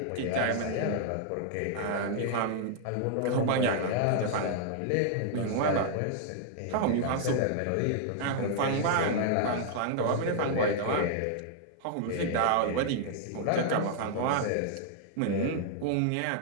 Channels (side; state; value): both; different; correlation -0.01